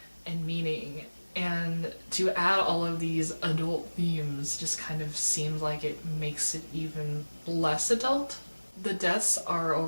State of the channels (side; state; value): both; inverted; correlation -1.00